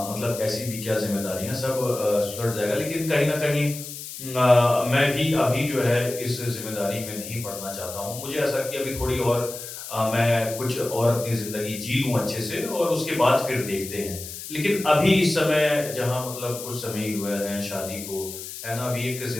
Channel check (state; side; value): noise; left; hiss, 10 dB below the sound